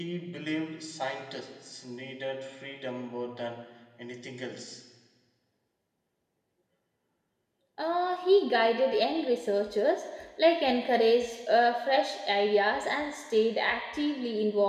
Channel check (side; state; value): both; identical; correlation 1.00